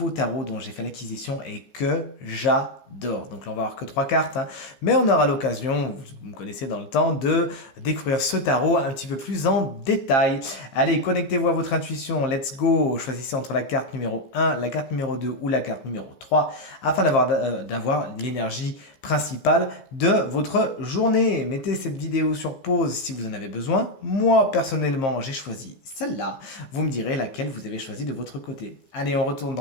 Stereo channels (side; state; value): right; late; 15 ms